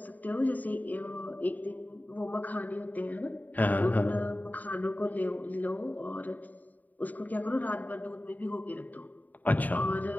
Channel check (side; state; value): right; late; 0.080 ms